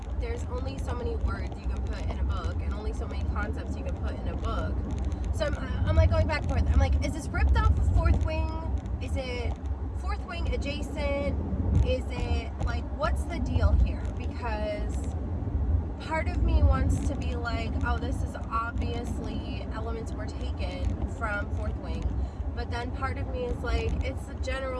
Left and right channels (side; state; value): both; identical; correlation 1.00